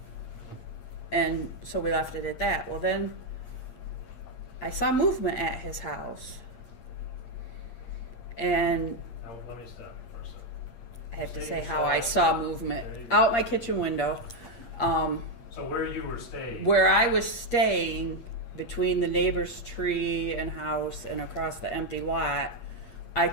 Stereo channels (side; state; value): right; late; 8.6 ms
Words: And so we left it at that. Well, then I saw movement at his house. And Now, let me stop you for a second. I have to Say say you how saw I it. saw movement There you go. out my kitchen window. So where you were staying? Where I was staying, between the neighbor's tree and house and across the empty lot, I